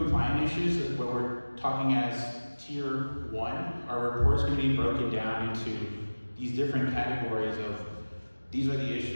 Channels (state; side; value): inverted; both; correlation -1.00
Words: issues where we're talking as tier 1, our report is going to be broken down into these different categories of these are the